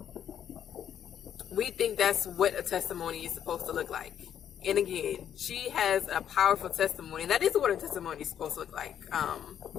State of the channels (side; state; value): right; quieter; 9.5 dB